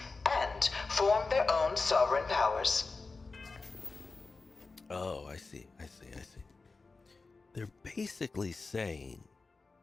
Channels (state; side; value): quieter; right; 4.0 dB